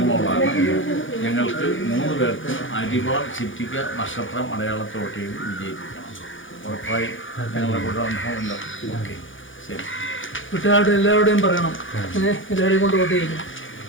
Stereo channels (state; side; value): late; right; 0.57 ms